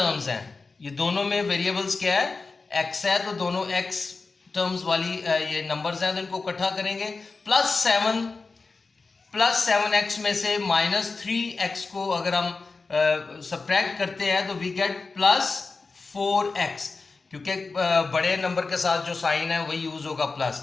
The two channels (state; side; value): quieter; right; 4.1 dB